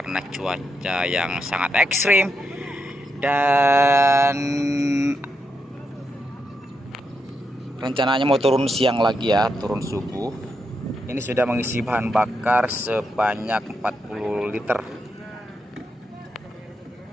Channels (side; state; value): both; normal; correlation 0.83